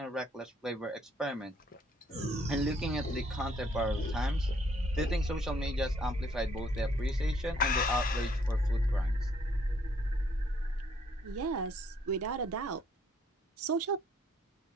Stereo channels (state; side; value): normal; both; correlation 0.66